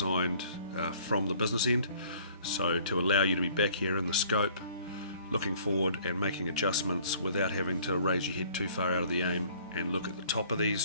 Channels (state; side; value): inverted; both; correlation -0.55